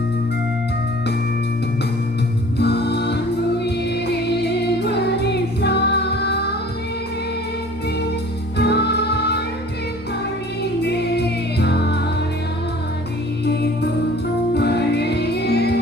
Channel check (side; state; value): both; normal; correlation 0.48